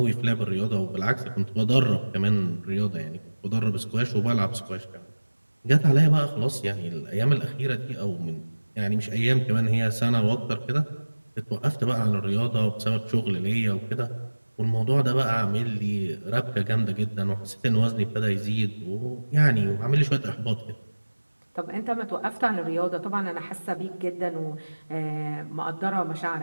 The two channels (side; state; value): both; inverted; correlation -1.00